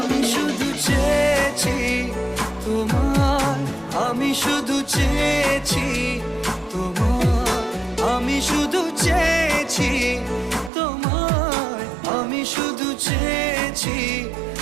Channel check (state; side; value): drops out; left; at 10.7 s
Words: শুধু চেয়েছি তোমার, আমি শুধু চেয়েছি তোমার, আমি শুধু চেয়েছি তোমার, আমি শুধু চেয়েছি